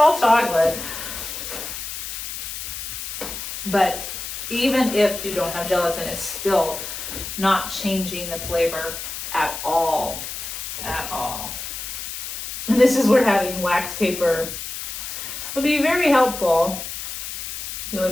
chocolate. But even if you don't have gelatin, it's still not changing the flavor at all. At all. And this is where having wax paper would be very helpful. It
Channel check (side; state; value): left; noise; hiss, 7 dB below the sound